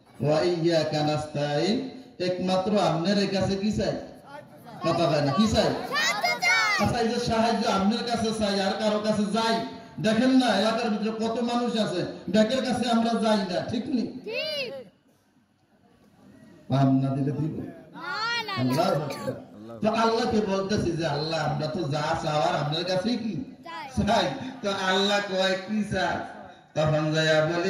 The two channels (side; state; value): both; identical; correlation 1.00